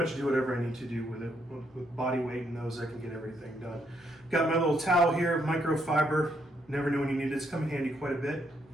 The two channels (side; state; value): both; normal; correlation 0.75